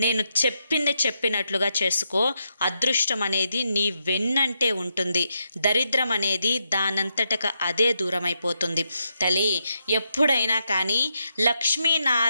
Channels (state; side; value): inverted; both; correlation -0.82